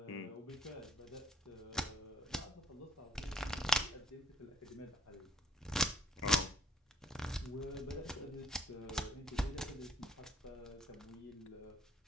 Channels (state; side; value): normal; both; correlation 0.61